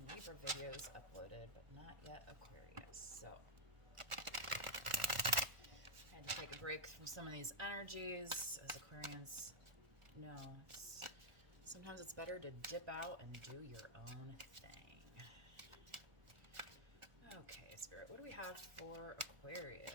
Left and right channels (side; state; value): left; late; 1.4 ms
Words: Libra videos uploaded, but not yet Aquarius. So I had to take a break from some of these energies, as Aquarians know. Sometimes it's better to dip out and do your own thing. Okay, Spirit, what do we have for